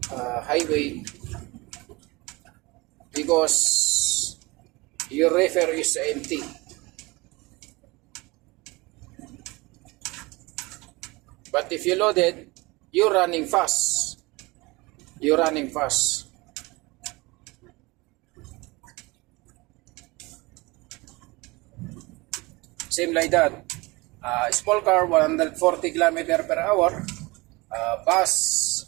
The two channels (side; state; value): left; quieter; 23.8 dB